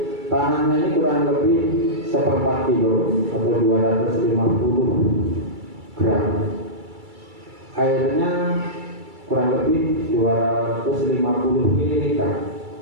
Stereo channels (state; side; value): late; left; 2.3 ms